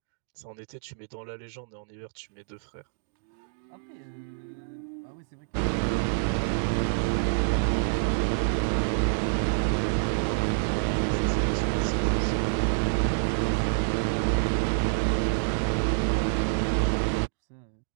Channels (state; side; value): silent; left; digital silence